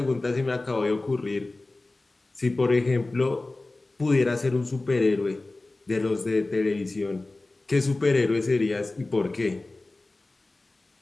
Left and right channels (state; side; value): quieter; right; 3.0 dB